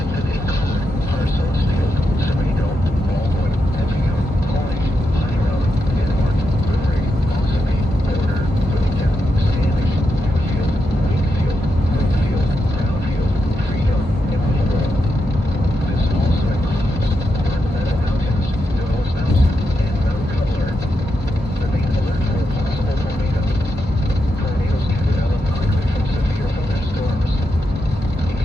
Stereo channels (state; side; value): normal; both; correlation 0.85